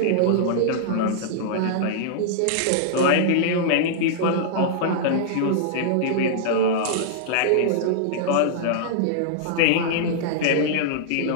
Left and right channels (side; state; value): both; different; correlation -0.01